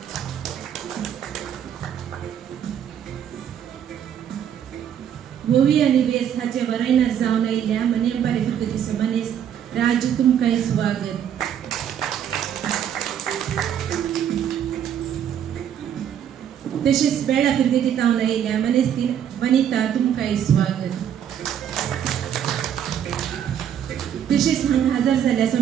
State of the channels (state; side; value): quieter; left; 9.3 dB